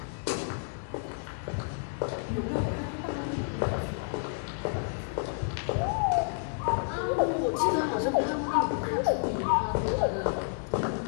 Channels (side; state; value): right; silent; digital silence